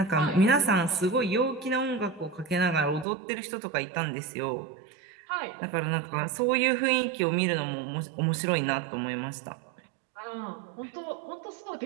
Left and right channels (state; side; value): drops out; left; at 3.1 s